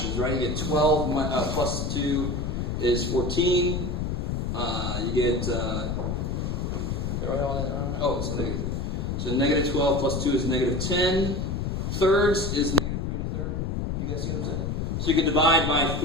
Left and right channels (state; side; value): noise; left; rumble, 1 dB below the sound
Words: right? You get 12 plus 2 is 14. You get, oh, it's negative. So negative 12 plus 2 is negative 10. Thirds is negative 3 1/3. You guys see what I'm saying? So you can divide by